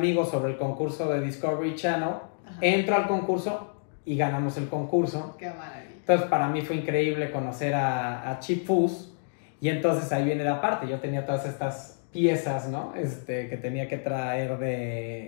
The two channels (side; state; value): right; silent; digital silence